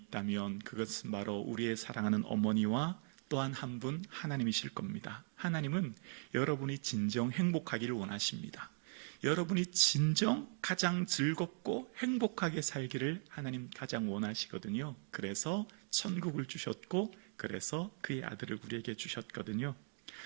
그것은 바로 우리의 사랑하는 어머니와 또한 한 분 하나님이실 겁니다. 하나님은 여러분이 진정 행복하기를 원하십니다. 여러분이 진정 가장 즐겁고 행복하게 살기를 하나님 가장 원하시거든요. 그래서 천국을 주셨고 그래서 그의 아들을 우리에게 주셨거든요.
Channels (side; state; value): left; silent; 52 dB below the other